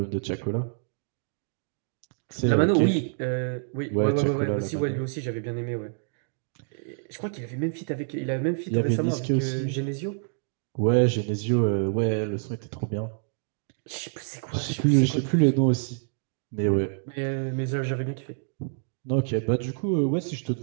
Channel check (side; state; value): left; silent; digital silence